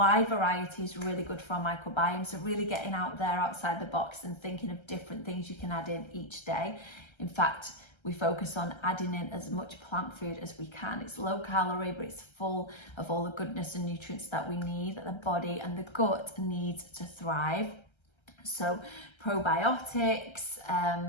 variety is really good for our microbiome. So really getting out there outside the box and thinking of different things you can add in each day. In fact, we focus on adding in as much plant food as we can. It's low calorie, but it's full of all the goodness and nutrients that we need, that the body and the gut needs to thrive. So probiotics,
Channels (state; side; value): late; right; 1.3 ms